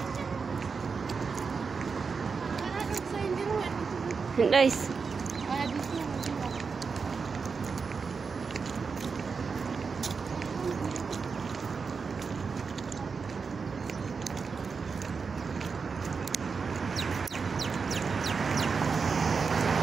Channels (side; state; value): left; quieter; 5.2 dB